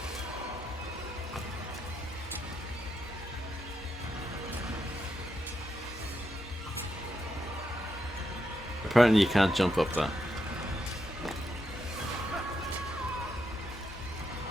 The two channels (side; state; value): both; normal; correlation 0.82